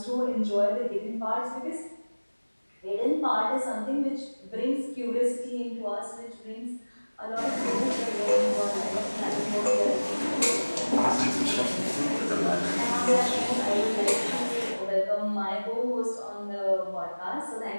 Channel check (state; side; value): inverted; both; correlation -1.00